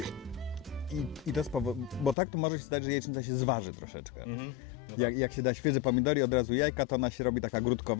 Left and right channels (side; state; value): right; drops out; at 2.1 s